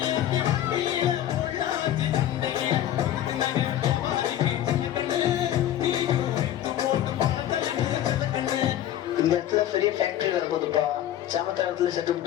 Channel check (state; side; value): quieter; right; 11.9 dB